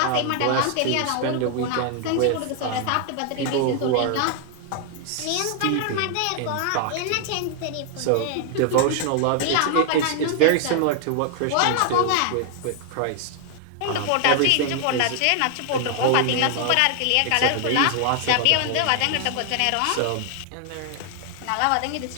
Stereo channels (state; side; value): different; both; correlation 0.00